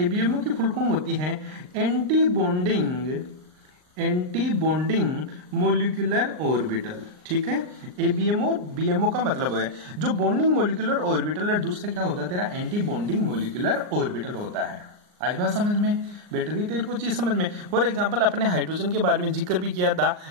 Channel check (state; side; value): late; left; 39 ms